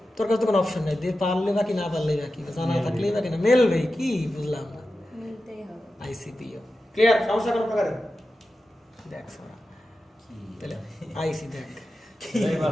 তোর কাছে তো কোনো অপশন নাই, দিয়ে পারলে বাকি না পারলেই বাকি, জানা থাকলেই বাকি না, মেলবে কি বুঝলাম না। মিলতেই হবে। ICPO clear? সমস্যা কোনো প্রকারের? দেখ সোনা, তাহলে আইসি দেখ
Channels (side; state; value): both; normal; correlation 0.92